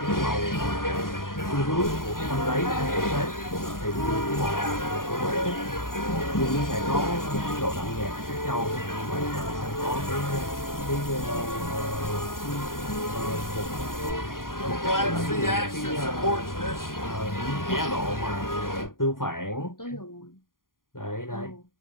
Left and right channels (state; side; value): late; right; 0.90 ms